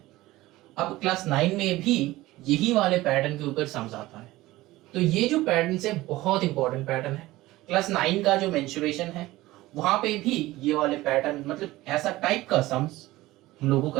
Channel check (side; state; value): left; quieter; 17.9 dB